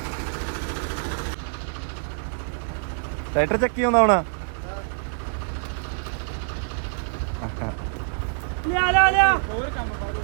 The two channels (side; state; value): left; silent; digital silence